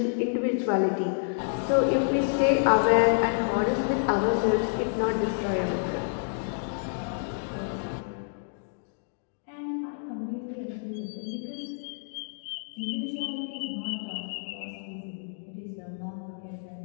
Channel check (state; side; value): silent; right; digital silence